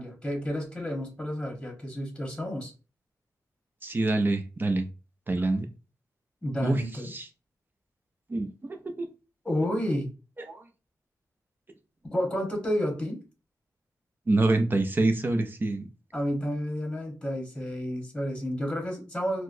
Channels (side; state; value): both; normal; correlation 0.92